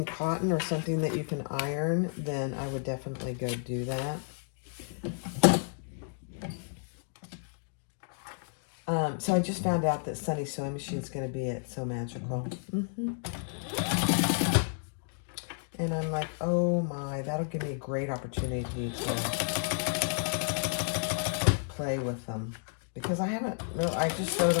cotton or something that you can iron, then I would definitely go do that. So I just found out that Sunny Sewing Machine is going to be at So Magical. And I'm like, oh my, that'll give me a great opportunity to play with them. Because I haven't, really, I just sewed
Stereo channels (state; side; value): silent; right; 57 dB below the other